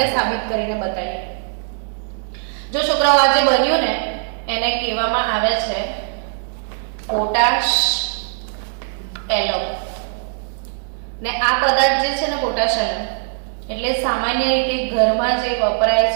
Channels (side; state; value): left; silent; digital silence